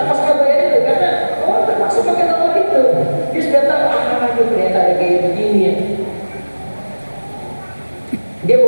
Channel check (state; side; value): inverted; both; correlation -1.00